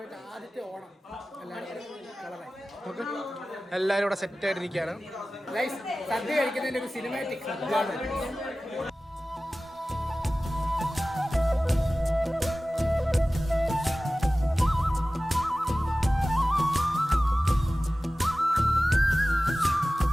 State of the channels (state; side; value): normal; both; correlation 0.96